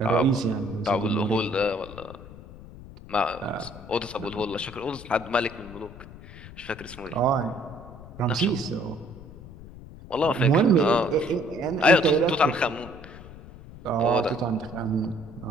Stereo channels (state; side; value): noise; left; rumble, 16 dB below the sound